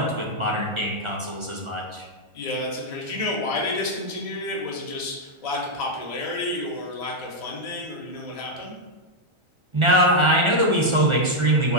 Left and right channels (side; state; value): left; late; 1.4 ms